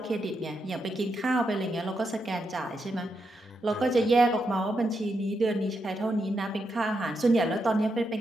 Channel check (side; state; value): both; normal; correlation 0.83